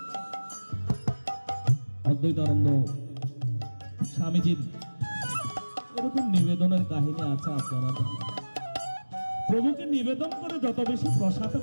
অদ্বৈতানন্দ স্বামীজির এরকম নিবেদনের কাহিনী আছে, আপনারা জানেন। প্রভুকে নিবেদন করে যত বেশি প্রসাদ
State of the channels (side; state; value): both; inverted; correlation -1.00